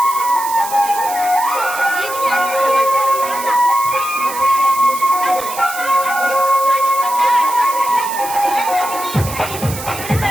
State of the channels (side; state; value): right; noise; hiss, 10 dB below the sound